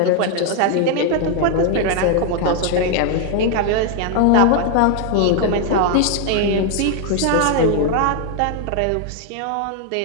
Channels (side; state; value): both; different; correlation 0.00